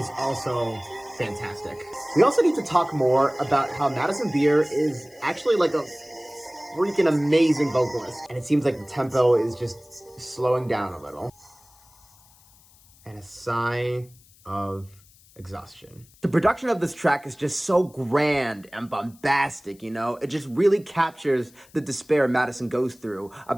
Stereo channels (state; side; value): noise; left; hiss, 28 dB below the sound